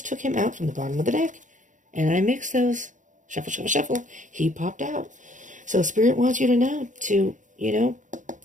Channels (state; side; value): late; left; 0.37 ms